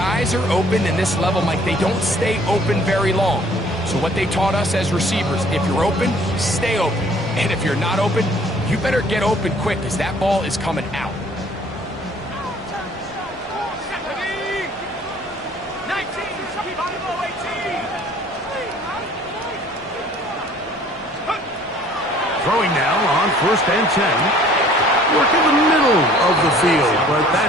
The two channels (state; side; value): normal; both; correlation 0.55